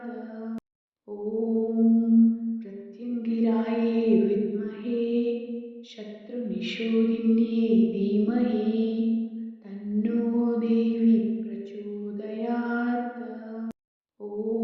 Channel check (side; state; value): both; identical; correlation 1.00